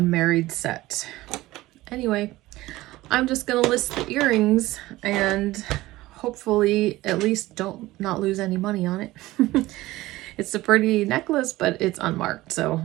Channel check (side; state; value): left; quieter; 17.8 dB